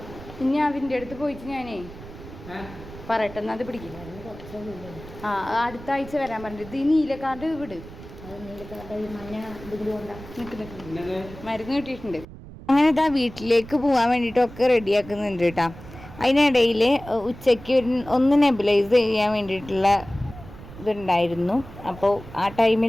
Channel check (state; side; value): noise; right; rumble, 16 dB below the sound